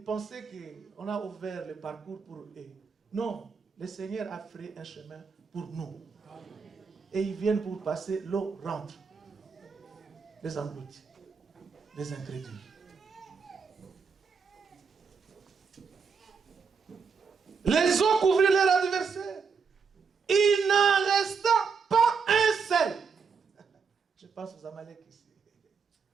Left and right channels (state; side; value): quieter; left; 5.6 dB